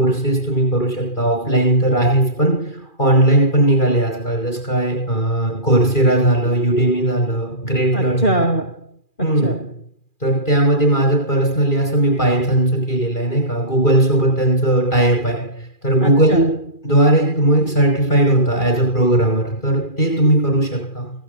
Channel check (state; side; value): late; right; 2.4 ms